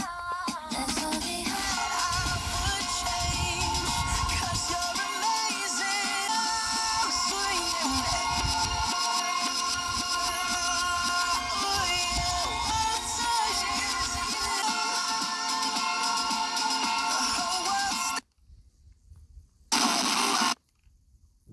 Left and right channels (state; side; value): identical; both; correlation 1.00